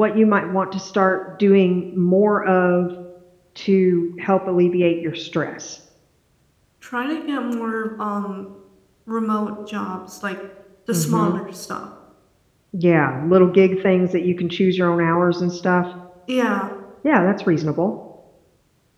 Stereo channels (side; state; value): both; identical; correlation 1.00